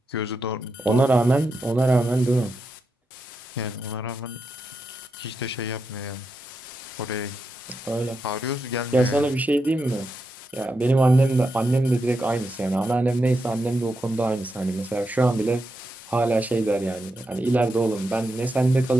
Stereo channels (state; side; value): normal; both; correlation 0.86